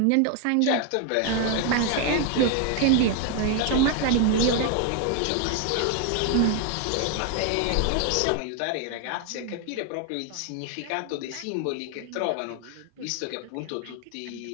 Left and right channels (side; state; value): both; different; correlation 0.01